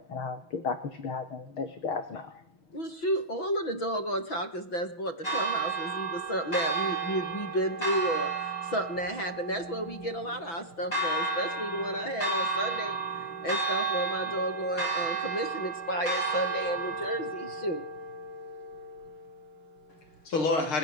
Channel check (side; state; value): right; late; 6.0 ms